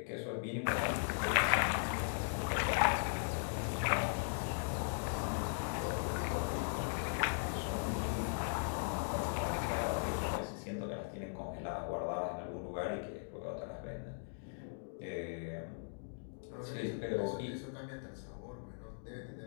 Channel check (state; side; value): silent; right; digital silence